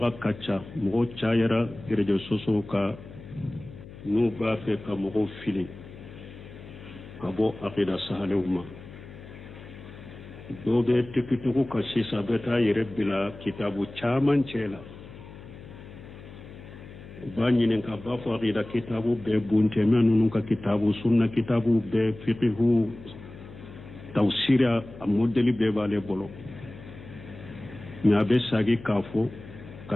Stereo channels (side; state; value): left; noise; hum, 16 dB below the sound